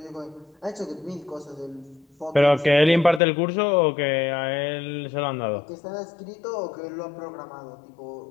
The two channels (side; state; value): right; drops out; at 3.2 s